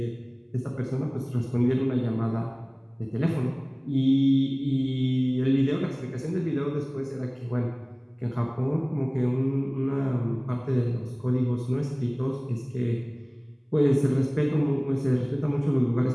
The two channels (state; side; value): identical; both; correlation 1.00